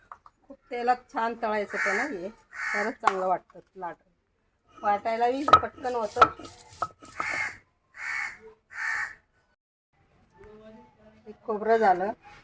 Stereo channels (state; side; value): identical; both; correlation 1.00